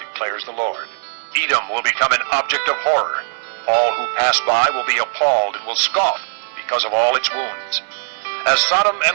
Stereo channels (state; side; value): silent; left; 58 dB below the other